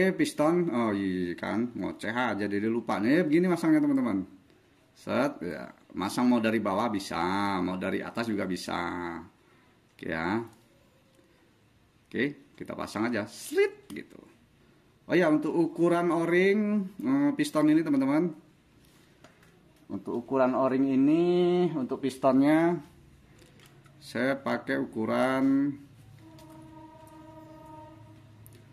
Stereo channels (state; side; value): identical; both; correlation 1.00